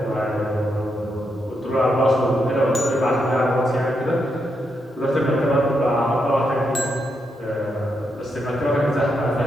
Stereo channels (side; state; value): both; normal; correlation 0.82